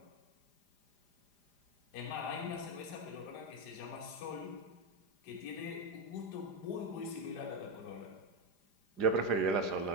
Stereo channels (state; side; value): late; right; 4.9 ms